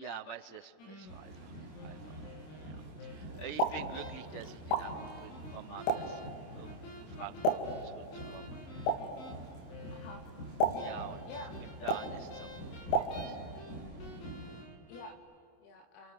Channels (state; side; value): late; right; 26 ms